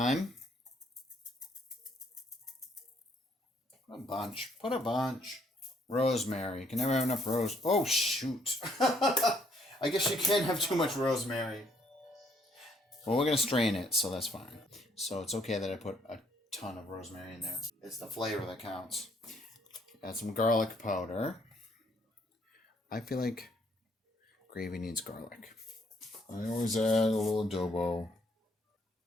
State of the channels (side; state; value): both; normal; correlation 0.67